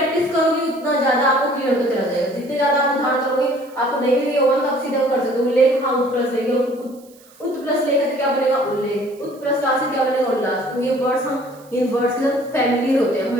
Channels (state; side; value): noise; right; hiss, 27 dB below the sound